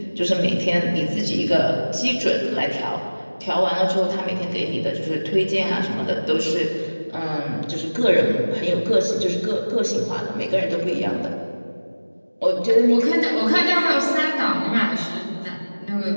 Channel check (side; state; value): both; inverted; correlation -1.00